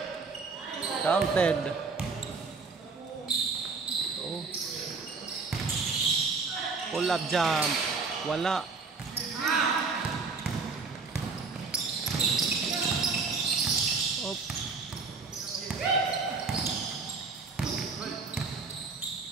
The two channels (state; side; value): quieter; left; 4.5 dB